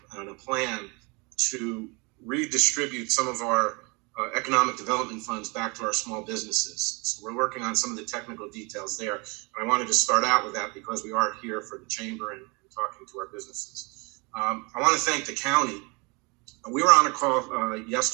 and a plan to redistribute some of our economic development funds back to our small businesses. So we're working on some of the technical details there. And I wanted to start out with that because we are here for the chamber and talking to our businesses. I want to thank the county. We were on a call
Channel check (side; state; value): left; quieter; 29.2 dB